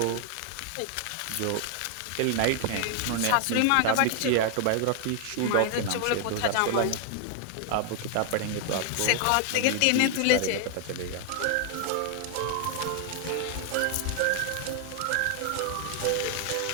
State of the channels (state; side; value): different; both; correlation 0.00